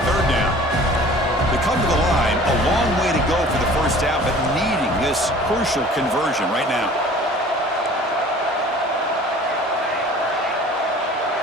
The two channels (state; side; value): normal; both; correlation 0.47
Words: 3rd down. They come to the line, a long way to go for the first down, but needing this crucial conversion right now.